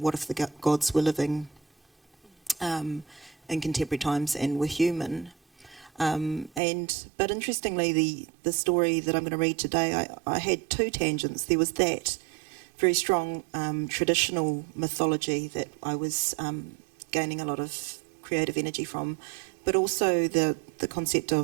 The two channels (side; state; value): left; drops out; at 6.6 s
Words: if the gods were living in contemporary times and were human? But interestingly, the story that I'm going to read today, I had two tangents. There was that very strong traditional mythology that I was gaining a lot of creative energy from, but also the concept